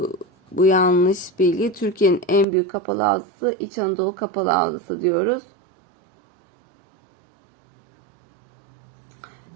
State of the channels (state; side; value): drops out; left; at 2.5 s